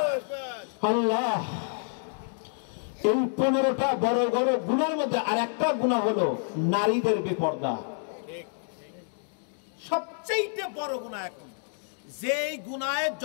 আল্লাহ। এই 15টা বড় বড় গুনার মধ্যে আর একটা গুনাহ হলো নারীদের বেপর্দা। সবচেয়ে বড় গুনাহ এখন, যেই গুনাহে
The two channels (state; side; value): silent; right; digital silence